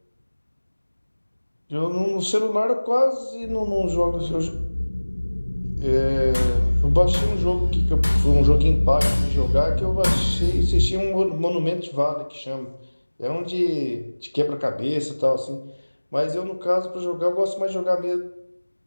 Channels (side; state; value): both; inverted; correlation -1.00